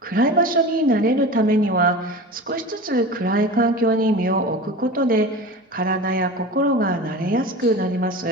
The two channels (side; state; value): both; normal; correlation 0.32